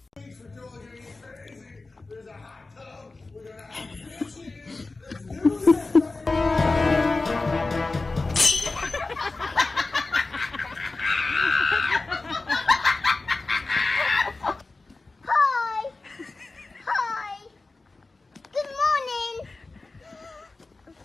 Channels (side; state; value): right; quieter; 3.5 dB